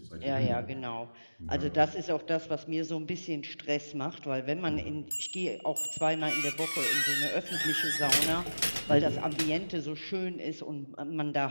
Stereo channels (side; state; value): both; inverted; correlation -1.00